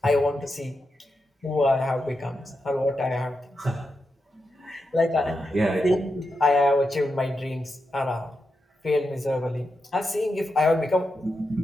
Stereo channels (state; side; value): normal; both; correlation 0.87